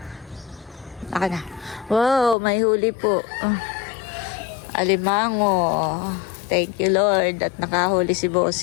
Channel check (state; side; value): drops out; right; at 2.4 s